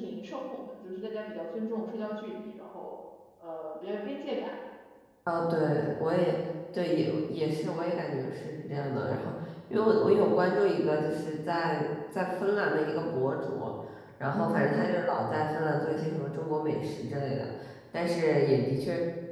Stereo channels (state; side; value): identical; both; correlation 1.00